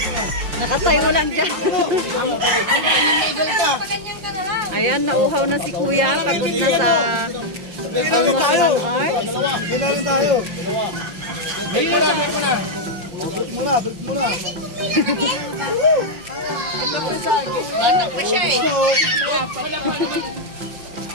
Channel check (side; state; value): left; late; 5.7 ms